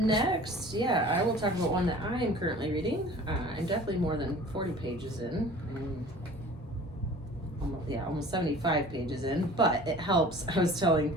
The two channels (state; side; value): normal; both; correlation 0.45